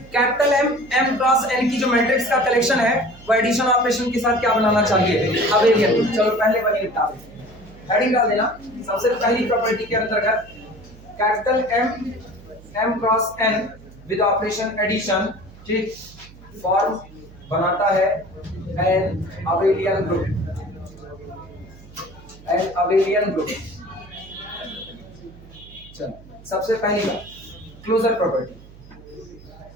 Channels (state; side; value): noise; right; hum, 21 dB below the sound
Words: कैपिटल M क्रॉस n की जो मैट्रिक्स का कलेक्शन है वो एडिशन ऑपरेशन के साथ क्या बनाना चाहिए? अबेलियन। चलो पहले वही निपटा देते हैं, हेडिंग डाल देना। सबसे पहली प्रॉपर्टी के अंतर्गत capital M cross n with operation addition, ठीक, फॉर्म बनाता है an abelian group, an abelian group. चलो सबसे पहली बात क्लोजर प्रॉपर्टी,